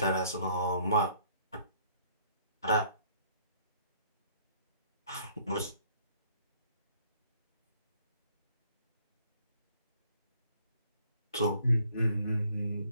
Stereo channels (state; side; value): inverted; both; correlation -0.62